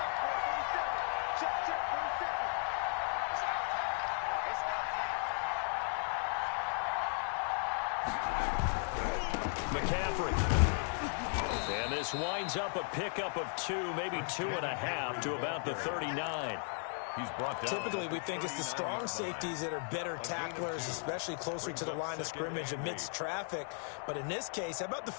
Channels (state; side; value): silent; right; 54 dB below the other